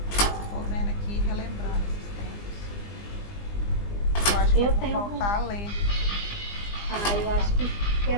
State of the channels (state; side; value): late; right; 20 ms